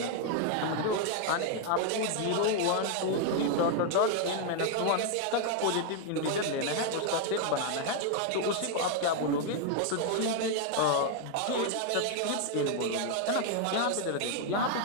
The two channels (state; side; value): different; both; correlation 0.00